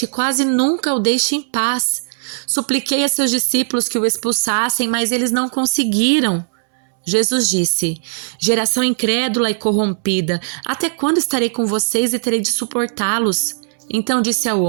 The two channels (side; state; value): left; silent; 67 dB below the other